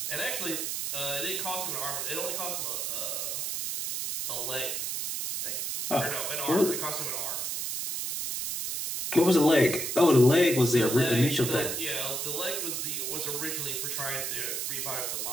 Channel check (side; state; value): right; noise; hiss, 2 dB below the sound